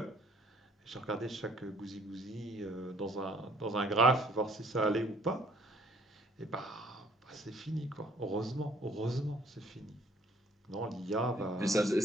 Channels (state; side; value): normal; both; correlation 0.60